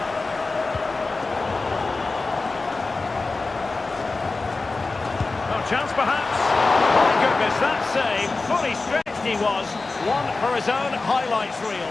Oh, chance perhaps. My goodness, that save. Fully stretched he was. One for his own highlights reel.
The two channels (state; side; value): quieter; right; 3.6 dB